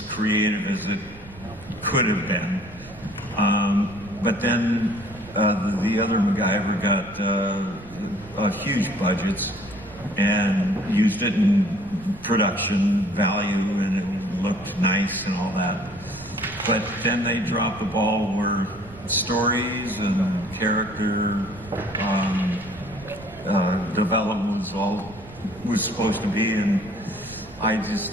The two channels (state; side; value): noise; right; rumble, 19 dB below the sound